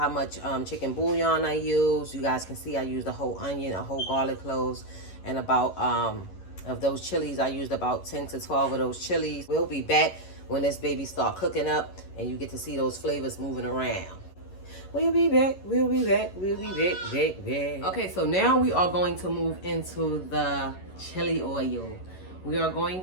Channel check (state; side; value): late; right; 11 ms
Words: much chicken bouillon I use. You guys can see I used a whole onion, a whole garlic cloves, and about of those chilies, I used about 10 to 12 of those chilies. We'll be back when this baby start cooking up and you get to see those flavors moving around. We'll be back, we'll be back, we'll be back. Okay, so now we are going to move into the chili oil. We are going